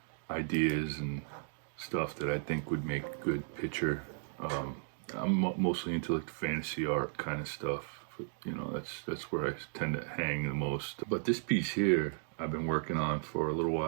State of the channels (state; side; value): silent; left; digital silence